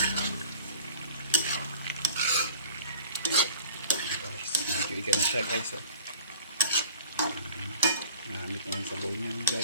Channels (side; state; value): both; inverted; correlation -0.46